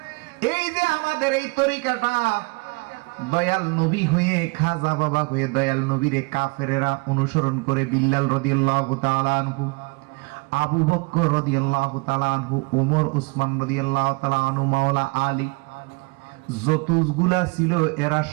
এই যে আমাদের এই তরিকাটা, দয়াল নবী হয়ে, খাজা বাবা হয়ে দয়াল নবীরে কাফেরেরা অনুসরণ করে, বিল্লাল রাদিয়াল্লাহু তাআলা আনহু, আবু বকর রাদিয়াল্লাহু তাআলা আনহু, ওমর ওসমান রাদিয়াল্লাহু তাআলা আনহু, মাওলা আলী, যতগুলা ছিল এরা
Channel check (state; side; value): quieter; left; 28.1 dB